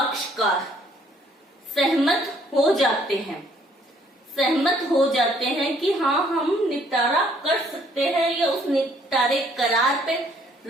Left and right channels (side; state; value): both; normal; correlation 0.64